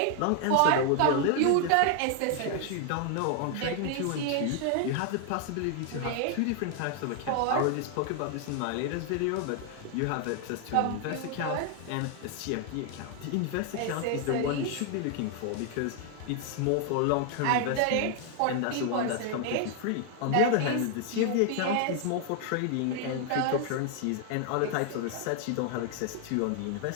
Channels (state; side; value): different; both; correlation 0.00